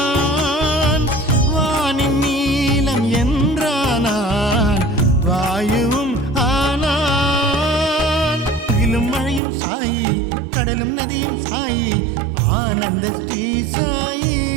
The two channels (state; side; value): drops out; left; at 9.4 s